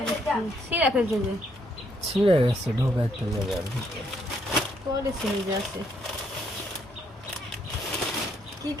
সিরা ফেলছে যে ছিঁড়ে গেছে ঢোকাইতে যাবে পরে ছিঁড়ে যাচ্ছে। কি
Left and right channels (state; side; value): normal; both; correlation 0.72